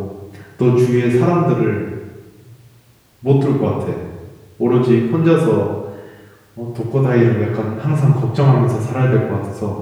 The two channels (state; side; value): identical; both; correlation 1.00